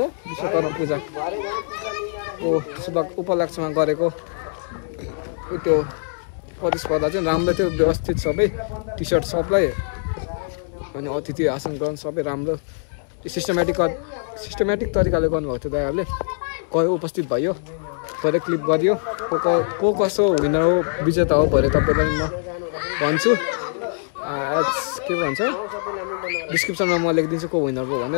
पूजा ओ शुभ उपलक्ष्यमा गरेको त्यो प्रतिस्पर्धा चाहिँ राम्रो थियो व्यवस्थित सबै टी सर्ट सबलाई अनि अतिथि आसन ग्रहण सबै राम्रो सिस्टमेटिक तरिकाले गर्नुभएको थियो दाइहरूले गयो उपस्थित भयो भरे क्लिप गरियो को कसो विनर हो विजेता हो भरे तपाईँलाई म भन्छु के भन्छ डिस्क्रिप्सनमा म लेखिदिन्छु को विनर हो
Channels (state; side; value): silent; right; 64 dB below the other